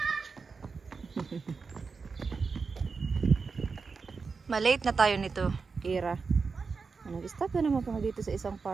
Malate na tayo nito, Kira. Nag-stop na naman pa dito sa isang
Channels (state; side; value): quieter; left; 4.9 dB